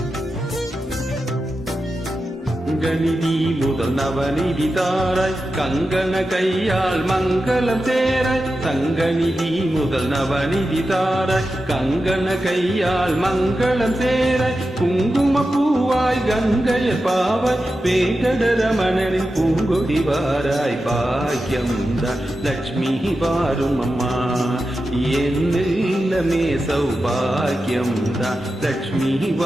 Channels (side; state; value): both; normal; correlation 0.91